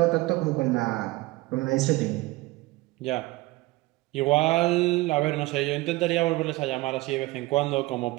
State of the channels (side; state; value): left; quieter; 20.1 dB